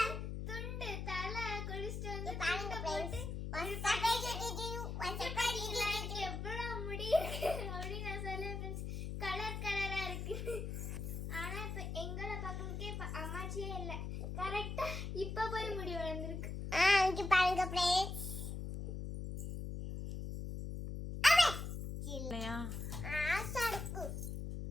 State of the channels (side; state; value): left; noise; hum, 5 dB below the sound